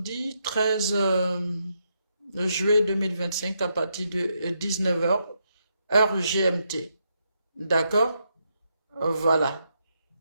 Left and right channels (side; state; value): both; inverted; correlation -0.80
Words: 13 juillet 2025 à partir de 19h, heure GMT. D'accord? Voilà.